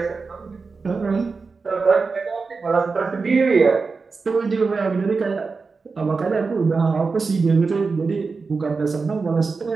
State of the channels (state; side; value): quieter; left; 4.5 dB